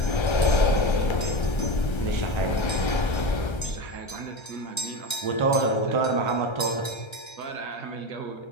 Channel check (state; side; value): late; right; 1.3 ms